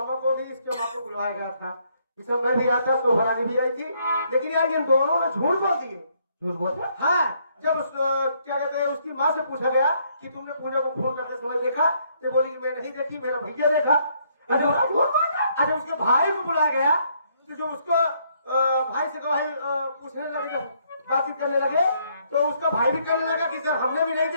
को भी इसके मामा को बुलाया गया था दिसंबर भी आया था तो भरानी भी आई थी लेकिन यार इन दोनों ने झूठ बोल दिए झूठ बोलते हाँ जब उस क्या कहते हैं उसकी माँ से पूछा गया कि तुमने पूजा को फोन करते समय देखा तो बोली मैं नहीं देखी मेरा भैया देखा अरे उसके भाई को बुलाया गया तो जो उसको भाई से भाई पूछने लगे बातचीत करने लगे तो उसका भाई भी करने लगा कि सर हमने भी नहीं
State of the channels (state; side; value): inverted; both; correlation -0.70